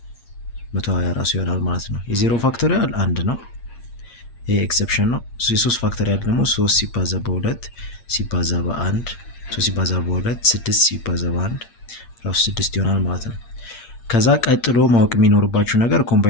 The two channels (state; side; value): late; right; 8.6 ms